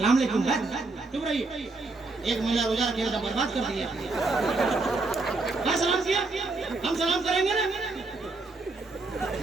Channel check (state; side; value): quieter; left; 3.4 dB